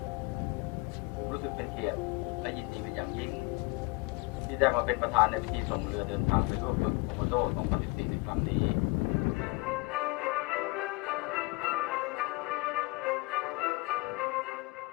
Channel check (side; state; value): right; quieter; 26.5 dB